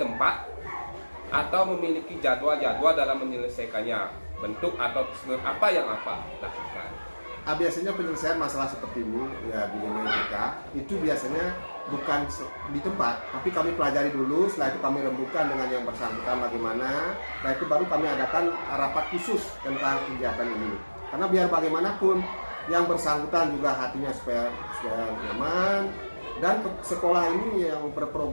tempat atau memiliki jadwal-jadwal dalam menyelesaikannya? Bentuk atau prosedur apa yang Bapak lakukan? Biasanya penyelesaian masalah seperti ini ya di dilema etika itu biasanya bukan di tempat, tapi kami pelajari dulu. Setelah itu kami rembukan dengan yang bersangkutan bagaimana. Setelah itu baru kami adakan rapat khusus tentang kegiatan ini. Karena biar bagaimanapun yang bersangkutan juga hatinya supaya nyaman, dan sekolah ini yang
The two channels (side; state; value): both; inverted; correlation -1.00